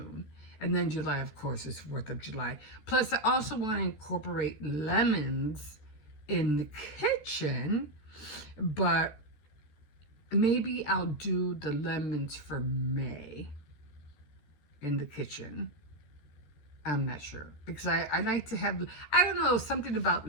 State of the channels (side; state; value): right; late; 14 ms